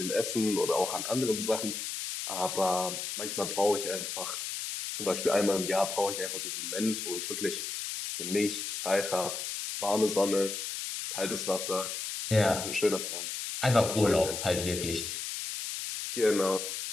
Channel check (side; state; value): left; noise; hiss, 5 dB below the sound